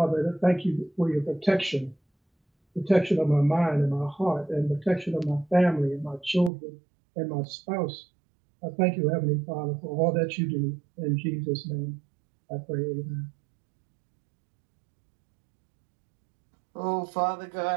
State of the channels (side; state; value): left; drops out; at 6.5 s